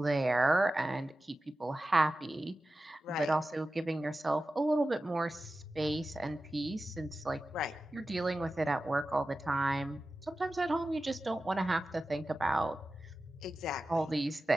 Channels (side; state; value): both; normal; correlation 0.94